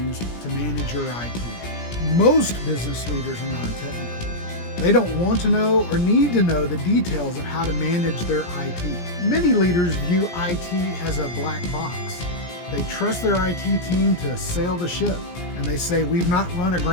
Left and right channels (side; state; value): right; late; 17 ms